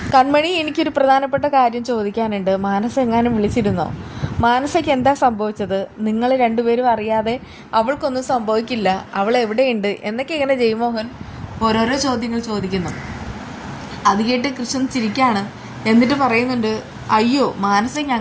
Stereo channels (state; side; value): identical; both; correlation 1.00